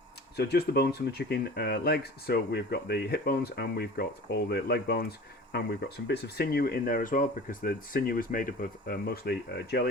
So just the bones from the chicken legs. So we've got the hip bones and we've got all the leg bones and we've got some bits of sinew in there as well because the sinew is made up of mostly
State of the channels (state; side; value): normal; both; correlation 0.40